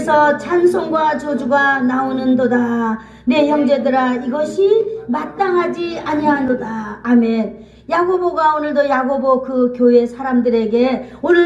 찬송과 저주가 나오는도다. 내 형제들아, 이것이 마땅하지 아니하노다. 아멘. 야고보가 오늘도 야고보 그 교회 사람들에게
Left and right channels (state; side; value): identical; both; correlation 1.00